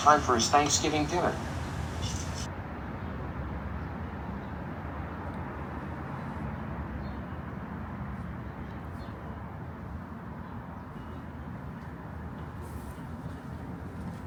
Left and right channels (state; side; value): identical; both; correlation 1.00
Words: for his Thanksgiving dinner.